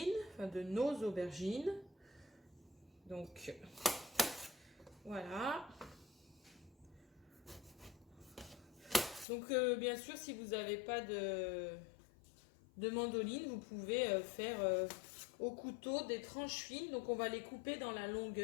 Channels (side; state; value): right; drops out; at 9.2 s